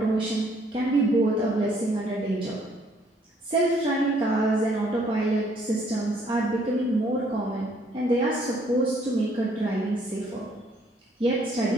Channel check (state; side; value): normal; both; correlation 0.65